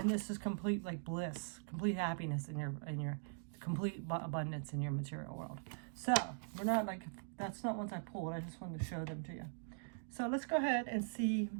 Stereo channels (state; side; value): silent; left; digital silence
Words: this is complete bliss, complete happiness in your complete abundance in your material world. So we're not that's not ones I pulled. I just wanted to show them to you. So let's go ahead and see,